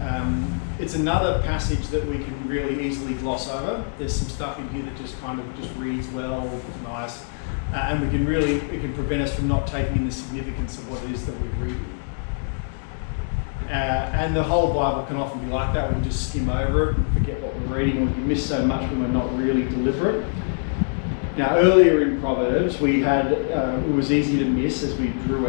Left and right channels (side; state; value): right; silent; digital silence